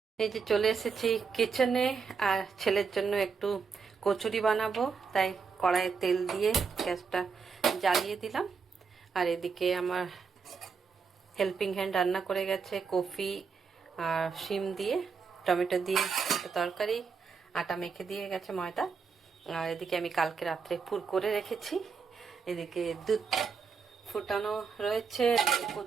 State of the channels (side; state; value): left; quieter; 5.5 dB